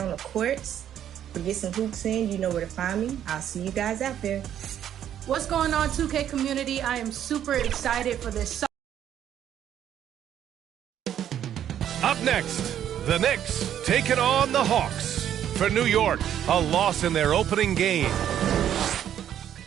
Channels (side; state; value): left; quieter; 10.3 dB